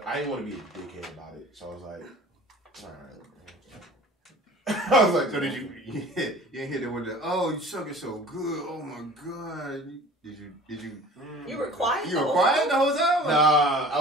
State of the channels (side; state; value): both; normal; correlation 0.44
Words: I didn't want to be a dickhead about it. So I was like, all right. I was like, so did you didn't hit it with the, "Oh, you suck it so good. Oh my God." Did you You were quiet? You were quiet the whole time? Nah, I